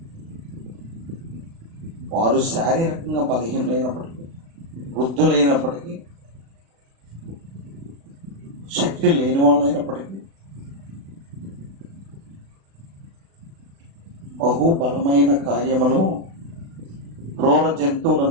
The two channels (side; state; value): left; late; 36 ms